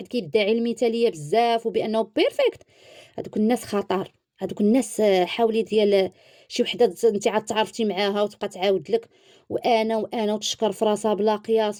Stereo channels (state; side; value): identical; both; correlation 1.00